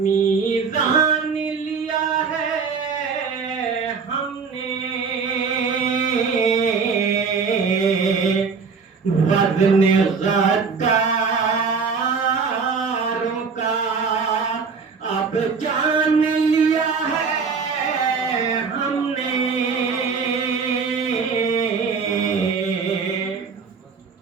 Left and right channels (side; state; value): left; quieter; 5.4 dB